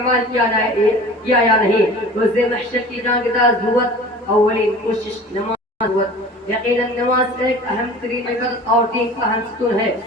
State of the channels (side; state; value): both; normal; correlation 0.41